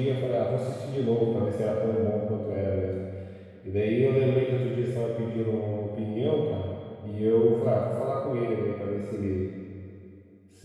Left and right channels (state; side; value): identical; both; correlation 1.00